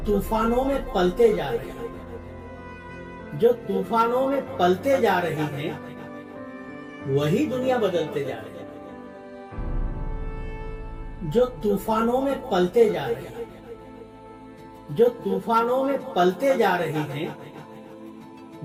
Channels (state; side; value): identical; both; correlation 1.00